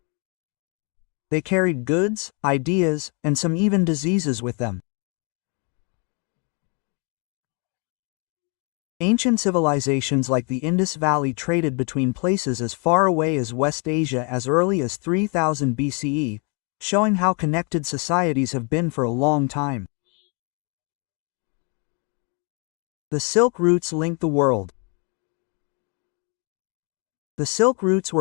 They carried goods, ideas, and some even diseases with them. Ancient civilizations like the Indus Valley traded between places as far away as West Asia as early as 3000 BCE, showing how connected societies have been for a long time. The Silk Routes linked the world. The Silk Routes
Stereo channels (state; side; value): quieter; right; 35.4 dB